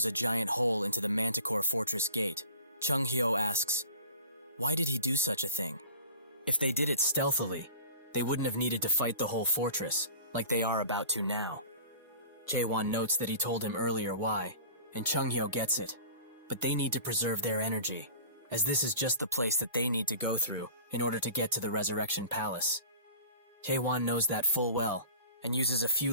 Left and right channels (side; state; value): both; inverted; correlation -0.41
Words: a giant hole into the Manticore Fortress gate, Chung-hyo asks, why did he do such a thing? If they did it stealthily, they wouldn't have needed to fight the whole fortress, like they are about to now. Jaewon notes that he told him earlier why, and Chung-hyo gets it, but they need to preserve their energy, as this is just the place that they need to go through in order to get to the Resurrection Palace. Jaewon knows that full well, and uses a